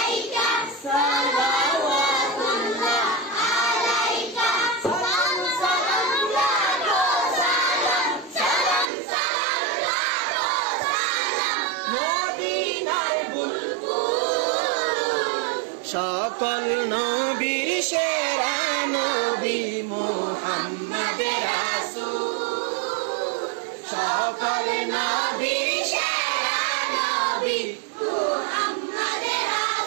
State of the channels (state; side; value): drops out; left; at 8.8 s